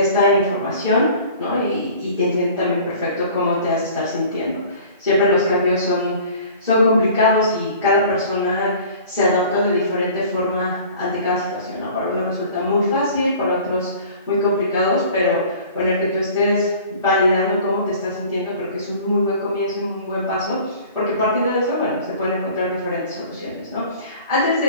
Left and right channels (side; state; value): both; inverted; correlation -0.46